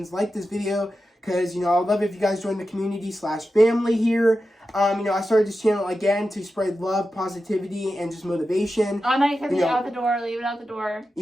like this video, because, I'd love it if you guys join the community/family here. I started this channel again to spread love, positivity, and just motivation. All negativity out the door, leave it out the door.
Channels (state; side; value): normal; both; correlation 0.91